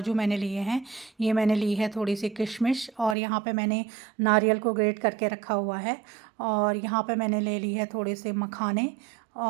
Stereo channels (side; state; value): left; drops out; at 3.2 s